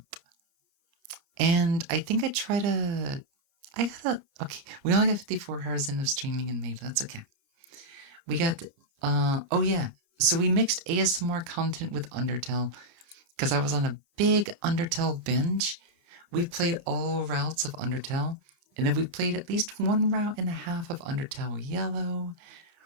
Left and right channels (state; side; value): late; left; 29 ms